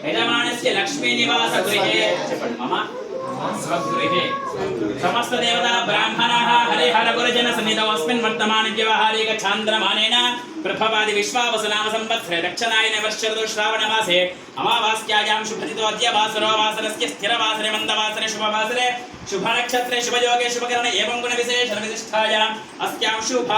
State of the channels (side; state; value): both; identical; correlation 1.00